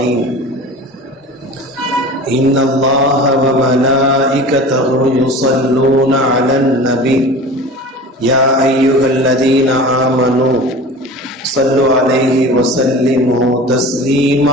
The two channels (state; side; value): normal; both; correlation 0.36